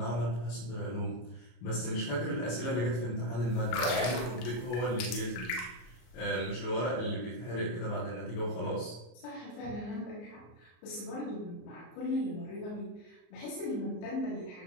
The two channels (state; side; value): late; right; 33 ms